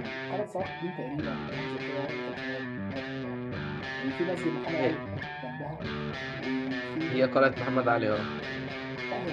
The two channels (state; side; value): identical; both; correlation 1.00